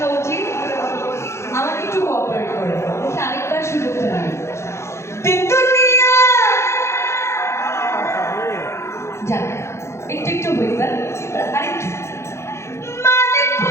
উচিত। আমাকে একটু কোঅপারেট করে আরেকবার সুযোগটা নিন। যান একটু একটু হইতাম আরেকটু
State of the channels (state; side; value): late; right; 0.13 ms